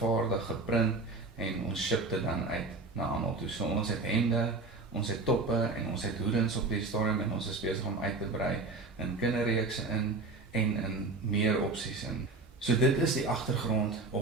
geprint en ons ship dit dan uit na almal toe. So ons het hemde, ons het toppe en ons het hoedens op die stadium en ons is besig om uit te brei in kinderreekse in en in meer opsies in. So dit is die agtergrond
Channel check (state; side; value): quieter; left; 3.6 dB